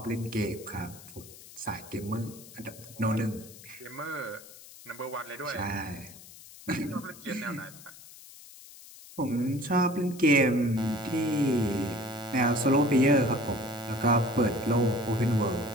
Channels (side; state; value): left; noise; hiss, 18 dB below the sound